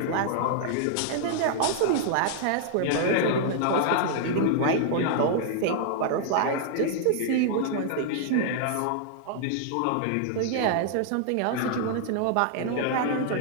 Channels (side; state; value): both; different; correlation -0.01